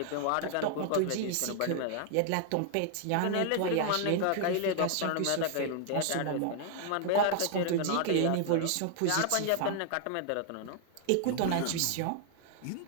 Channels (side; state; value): both; different; correlation 0.00